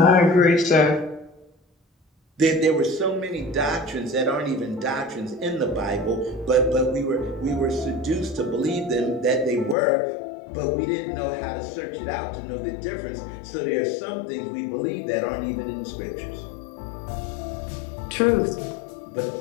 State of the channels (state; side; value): drops out; right; at 9.8 s